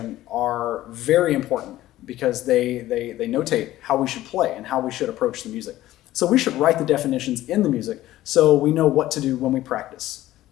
are very important because they notate how we should play and how we should approach the music. So we should write the definitions in the music so we know what to do when we practice.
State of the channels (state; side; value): quieter; right; 15.1 dB